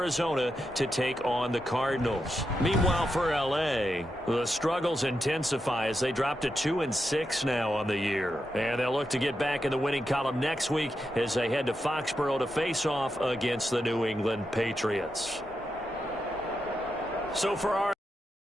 to take on the Cardinals. Meanwhile, for L.A., the struggles intensify as they drop to 2-6 now on the year. And they'll look to get back in the winning column next week as they head to Foxborough to face off against the New England Patriots. So for our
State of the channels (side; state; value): both; normal; correlation 0.86